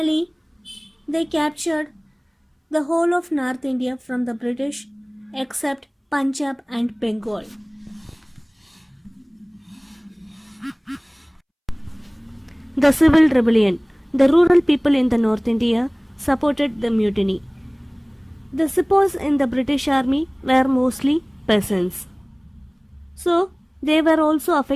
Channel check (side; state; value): both; identical; correlation 1.00